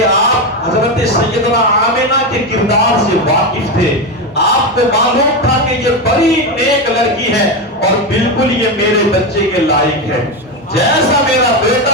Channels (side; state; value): both; normal; correlation 0.13